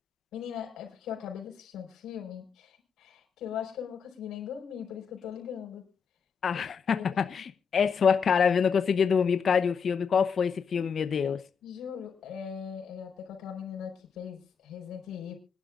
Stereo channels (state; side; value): quieter; right; 6.4 dB